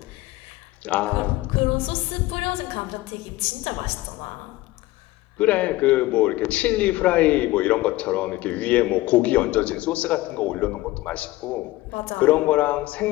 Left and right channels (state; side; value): quieter; right; 18.3 dB